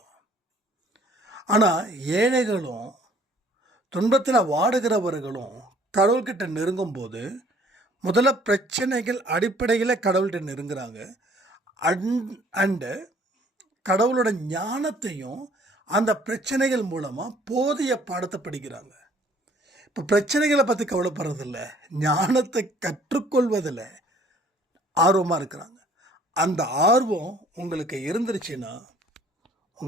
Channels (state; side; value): normal; both; correlation 0.57